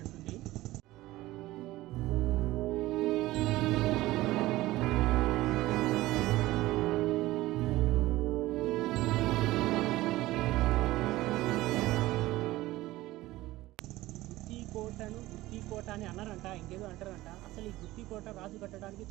ఉంది. గుత్తికోట అని అన్నారంట, ఇంకేదో అంటారంట. అసలు ఈ గుత్తికోట రాజు కట్టడానికి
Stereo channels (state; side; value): quieter; left; 17.5 dB